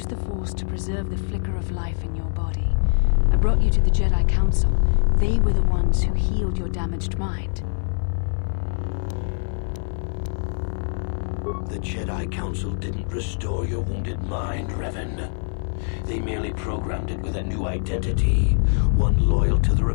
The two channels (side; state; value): right; silent; 60 dB below the other